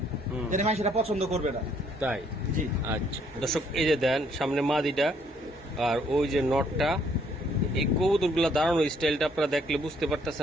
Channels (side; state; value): both; normal; correlation 0.66